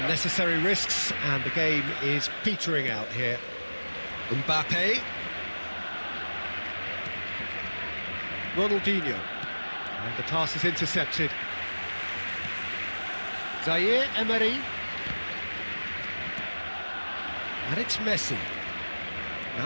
risks, and the game is petering out here. Mbappe. Ronaldinho. And the pass is intercepted. Zaire Emery. And it's Messi.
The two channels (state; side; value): inverted; both; correlation -1.00